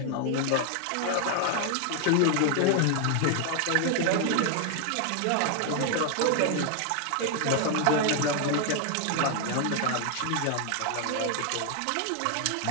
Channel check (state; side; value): different; both; correlation 0.00